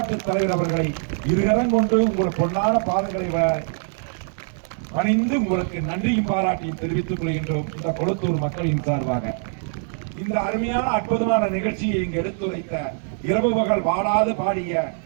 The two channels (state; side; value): silent; left; digital silence